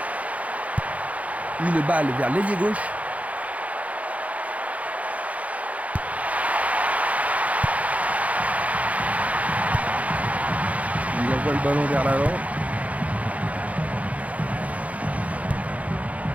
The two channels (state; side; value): late; left; 0.068 ms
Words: Une balle vers l'ailier gauche. Il envoie le ballon vers l'avant.